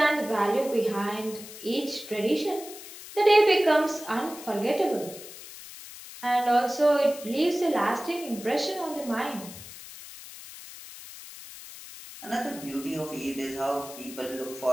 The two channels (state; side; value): noise; left; hiss, 14 dB below the sound